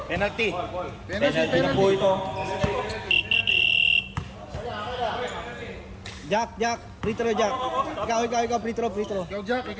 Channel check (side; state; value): both; identical; correlation 1.00